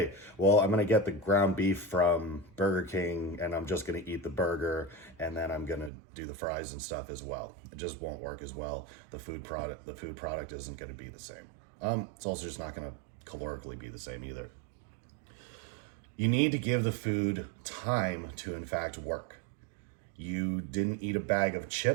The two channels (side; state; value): left; drops out; at 5.9 s